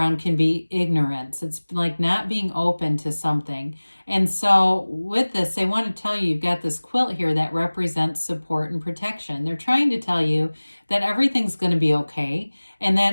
can be ignorance. It's like not being open to something. And so with this, they want to tell you you've got this quilt here that represents support and protection. They're trying to tell you that everything's going to be okay, and that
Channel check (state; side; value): inverted; both; correlation -1.00